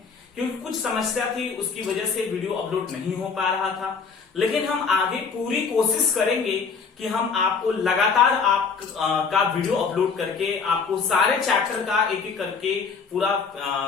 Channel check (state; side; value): quieter; right; 5.4 dB